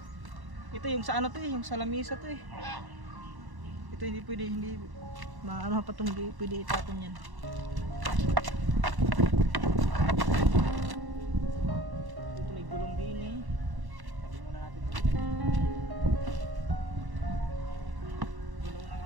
Ito yung sa ano to eh, yung sa lamisa to eh. Ito hindi pwede, hindi maano pa itong hindi pwede itatong yan. Ito may gulong din eh. Sabi muna natin gulong ng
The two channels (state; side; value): late; left; 1.1 ms